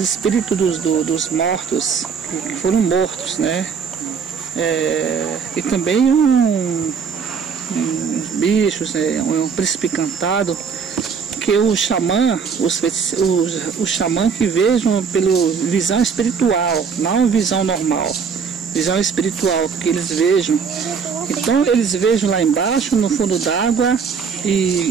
dos mortos, que foram mortos, né? E também uns bichos, um príncipe encantado, que o xamã, o xamã que vejam pela visão espiritual, não visão normal, visão espiritual, que eles vejam. Então eles vejam lá embaixo, no fundo d'água,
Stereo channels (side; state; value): left; quieter; 6.1 dB